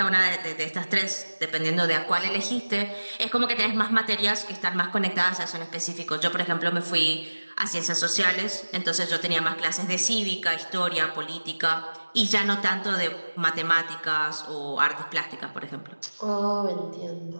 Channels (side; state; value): both; inverted; correlation -1.00